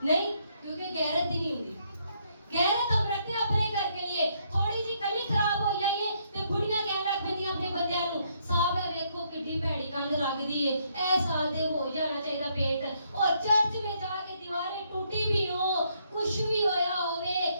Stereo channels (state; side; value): inverted; both; correlation -0.72